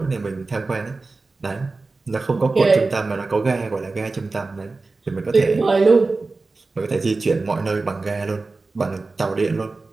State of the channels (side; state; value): left; quieter; 3.7 dB